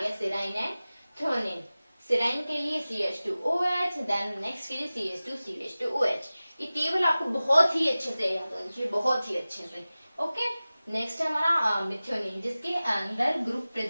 सेराइन एंड थ्रोनिन। सेराइन के लिए CH2OH, देन नेक्स्ट के लिए CH2 CH2OH। ये टेबल आपको बहुत ही अच्छे से याद होनी चाहिए, बहुत ही अच्छे से। ओके, नेक्स्ट है हमारा मिथ्योनिन, जिसके अंदर ग्रुप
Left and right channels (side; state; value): both; inverted; correlation -0.97